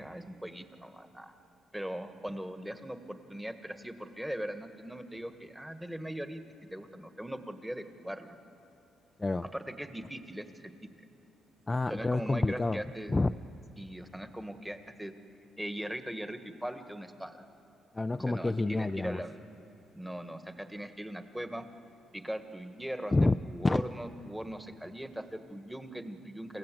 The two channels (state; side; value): normal; both; correlation 0.97